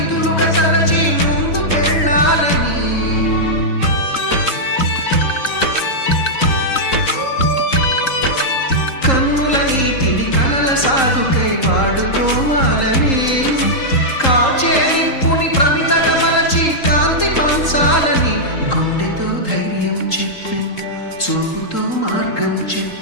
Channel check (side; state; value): right; late; 3.8 ms